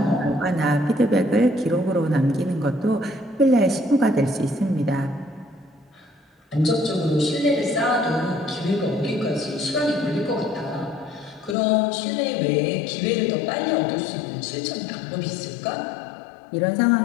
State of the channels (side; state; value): right; drops out; at 11.6 s